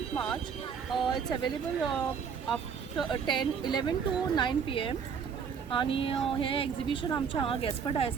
March. It's available after 11 to 9 PM. आणि हे एक्झिबिशन आमच्या हांगा गॅस्पर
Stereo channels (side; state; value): left; quieter; 6.7 dB